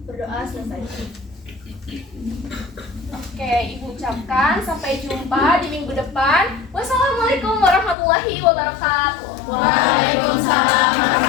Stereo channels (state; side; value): drops out; right; at 8.0 s